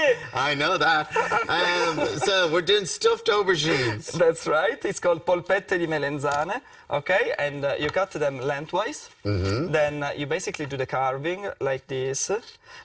I know that. So we're doing stuffed aubergines. That's right. It's called polpette di melenzane. Okay, and you cut them lengthwise. Then you basically do the carving like this,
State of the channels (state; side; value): identical; both; correlation 1.00